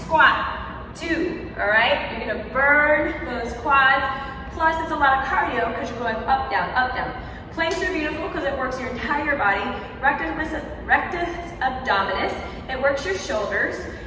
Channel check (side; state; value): both; identical; correlation 1.00